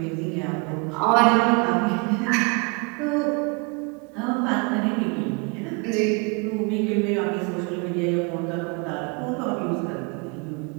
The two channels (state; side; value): quieter; left; 31.7 dB